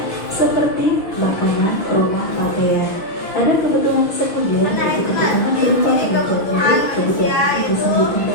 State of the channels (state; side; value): late; right; 6.2 ms